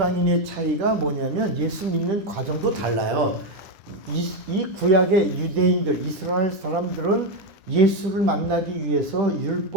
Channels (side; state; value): left; late; 10 ms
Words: 차이가 뭐냐면 예수 믿는 과정도 달라요. 이 구약의 유대인들, 이스라엘 사람들은 예수를 만나기 위해서